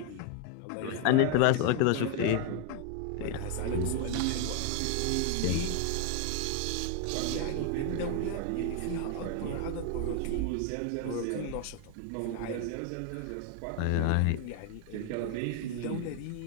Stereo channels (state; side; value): different; both; correlation 0.00